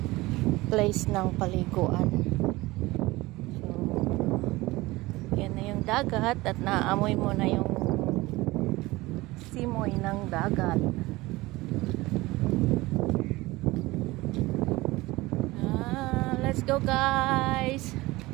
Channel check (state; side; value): quieter; left; 20.2 dB